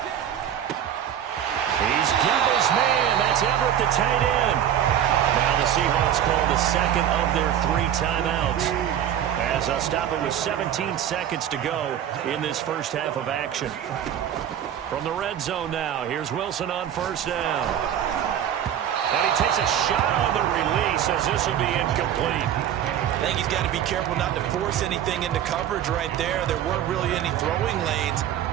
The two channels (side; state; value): left; quieter; 10.1 dB